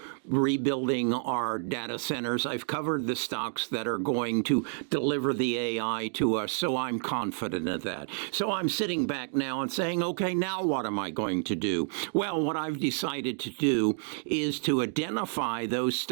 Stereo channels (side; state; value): left; silent; digital silence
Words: rebuilding our data centers. I've covered the stocks that are going to deliver the AI to us, so I'm confident of that. So I'm sitting back now and saying, okay, now what am I going to do? Well, what I've decided to do is to identify those